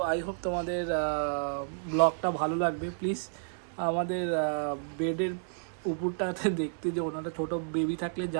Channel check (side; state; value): left; silent; 57 dB below the other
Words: আই হোপ তোমাদের ব্লগটা ভালো লাগবে। প্লিজ আমাদের বেডের উপরটাতে দেখতে, যে ওনারা ছোটো বেবি থাকলে